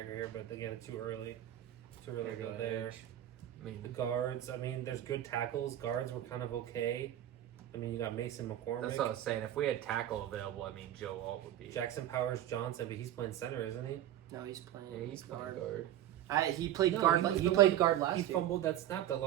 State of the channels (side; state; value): left; quieter; 12.2 dB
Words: here, but again, it's too early to really Here, go go there. edge. I The mean, guards, I mean, there's good tackles. Guards were kind of okay. I mean, you got Mason McCormick, that's what I was saying. If we had tackle available, I mean, Joe Alt would be. Jackson Powers Johnson, but he's playing center, isn't he? No, he's playing. Yeah, he's playing guard. guard. He played No, guard. he was He the played one- guard last He year. fumbled that snap that